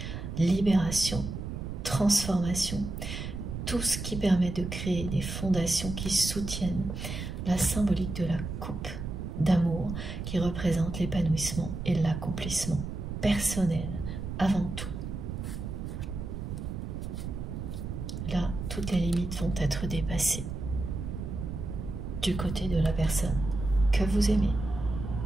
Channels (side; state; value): right; noise; rumble, 6 dB below the sound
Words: libération, transformation, tout ce qui permet de créer des fondations qui soutiennent la symbolique de la coupe d'amour qui représente l'épanouissement et l'accomplissement personnel avant tout. Là, toutes les limites vont être dépassées du côté de la personne que vous aimez.